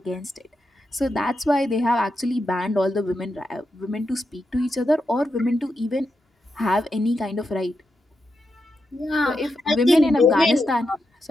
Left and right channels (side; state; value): both; normal; correlation 0.86